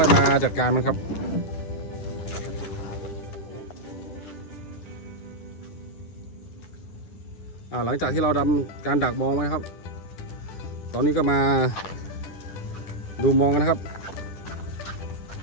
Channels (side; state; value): right; late; 10 ms